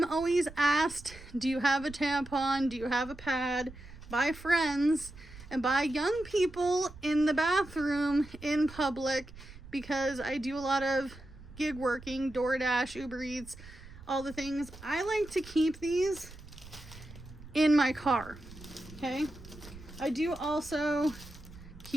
always asked, do you have a tampon? Do you have a pad? By friends and by young people in the bathroom in public, because I do a lot of gig working, DoorDash, Uber Eats, all the things. I like to keep these in my car. Okay. I do also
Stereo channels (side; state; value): right; noise; rumble, 17 dB below the sound